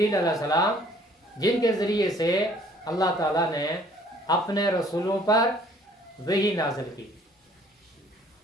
علیہ السلام، جن کے ذریعے سے اللہ تعالیٰ نے اپنے رسولوں پر وحی نازل کی۔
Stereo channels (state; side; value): normal; both; correlation 0.57